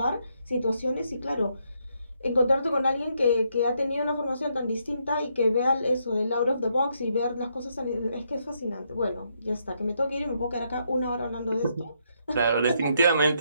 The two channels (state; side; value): inverted; both; correlation -0.76